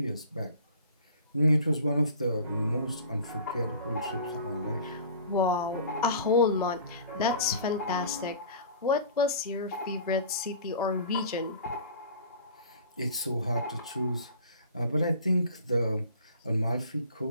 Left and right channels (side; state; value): both; inverted; correlation -0.43